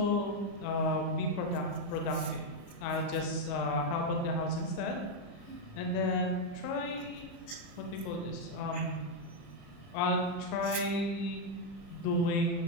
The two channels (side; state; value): right; late; 35 ms